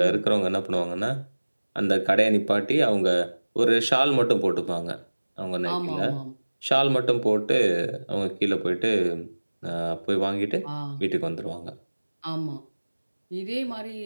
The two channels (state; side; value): inverted; both; correlation -1.00